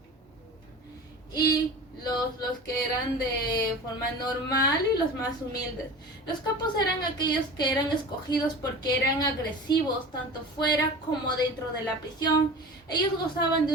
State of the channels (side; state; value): both; normal; correlation 0.36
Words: y los que eran de forma normal y los más humildes. Los capos eran aquellos que eran escogidos porque eran agresivos tanto fuera como dentro de la prisión. Ellos gozaban